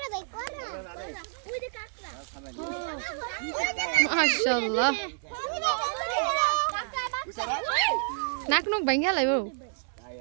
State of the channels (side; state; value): left; silent; 59 dB below the other